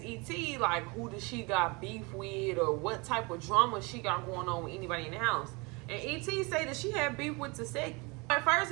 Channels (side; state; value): left; quieter; 28.0 dB